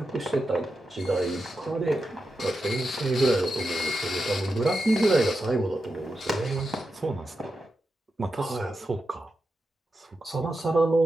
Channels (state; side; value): normal; both; correlation 0.88